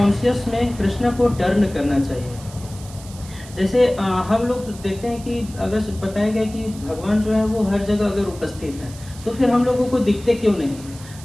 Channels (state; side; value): noise; right; hiss, 19 dB below the sound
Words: में कृष्ण को टर्न करना चाहिए। जैसे हम लोग देखते हैं कि अगर बताया गया कि भगवान जो है वो हर जगह अगर उपस्थित है, तो फिर हम लोगों को दिखते क्यों नहीं है?